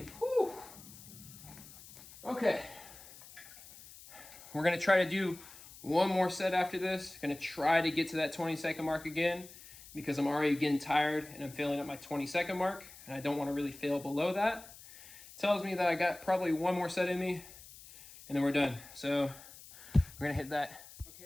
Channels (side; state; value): left; noise; hiss, 18 dB below the sound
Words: Whew. Okay. We're going to try to do one more set after this. Going to try to get to that 20-second mark again because I'm already getting tired and I'm failing at my 20-second mark and I don't want to really fail below that. Tells me that I got probably one more set in me and then we're done. So we're going to hit that.